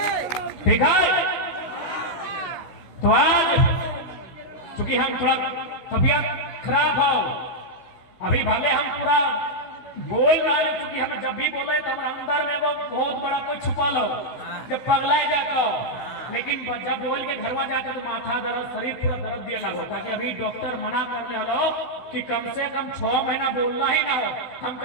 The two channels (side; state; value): right; late; 16 ms